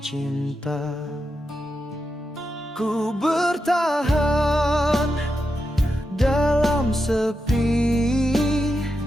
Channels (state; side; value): normal; both; correlation 0.87